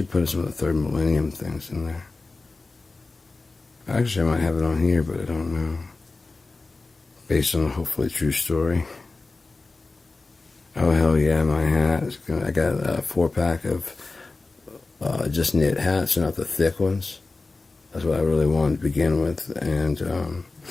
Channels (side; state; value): right; quieter; 3.6 dB